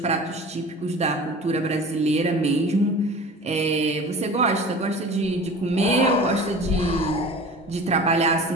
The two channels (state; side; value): normal; both; correlation 0.39